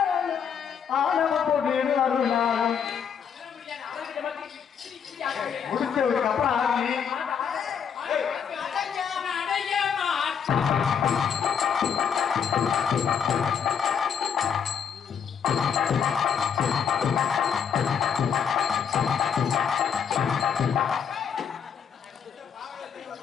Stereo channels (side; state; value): right; quieter; 7.4 dB